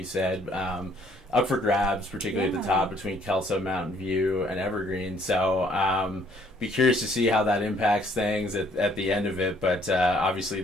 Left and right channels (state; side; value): normal; both; correlation 0.63